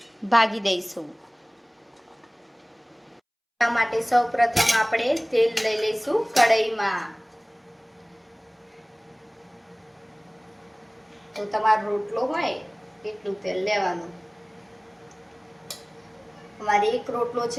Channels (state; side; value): identical; both; correlation 1.00